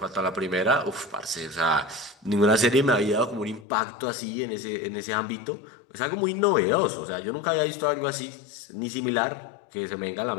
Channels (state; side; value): drops out; right; at 3.7 s